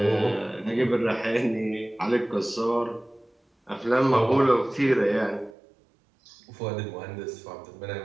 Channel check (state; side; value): drops out; left; at 5.6 s